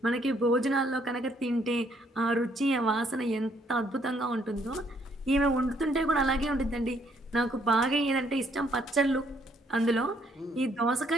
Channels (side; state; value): both; normal; correlation 0.68